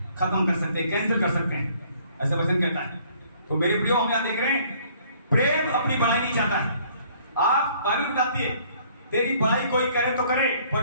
खत्म कर सकते हैं, कैंसिल कर सकते हैं, ऐसा वचन कहता है। तो मेरे प्रियो, हम यहां देख रहे हैं प्रेम अपनी बढ़ाई नहीं चाहता है। आप बाइबल बताती है तेरी बढ़ाई कोई करे तो करे,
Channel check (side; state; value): both; inverted; correlation -0.59